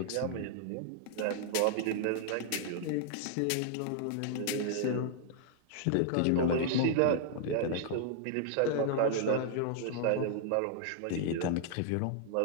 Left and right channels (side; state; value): both; different; correlation -0.01